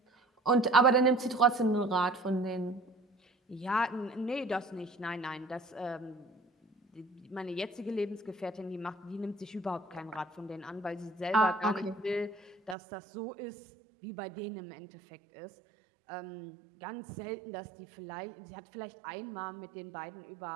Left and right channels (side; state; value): left; drops out; at 12.8 s